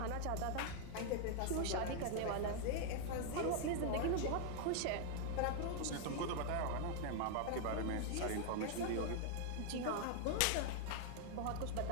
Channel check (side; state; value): both; different; correlation 0.00